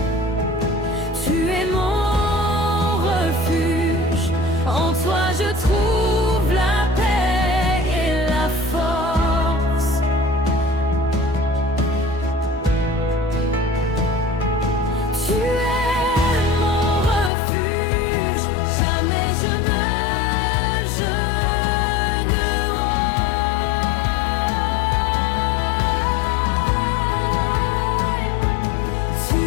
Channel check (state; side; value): drops out; right; at 17.3 s